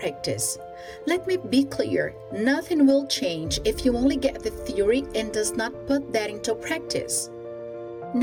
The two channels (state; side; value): identical; both; correlation 1.00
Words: Let me be clear, nothing will change if you only get the theory and does not put that into practice.